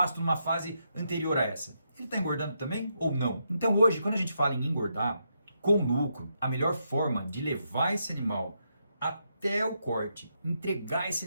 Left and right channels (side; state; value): both; inverted; correlation -0.80